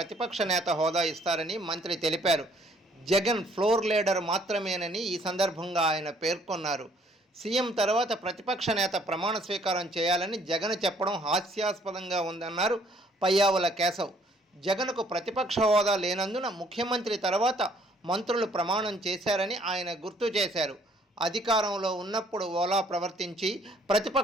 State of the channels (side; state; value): both; normal; correlation 0.62